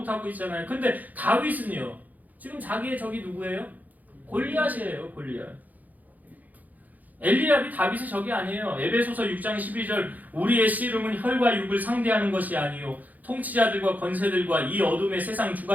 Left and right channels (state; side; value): late; left; 0.080 ms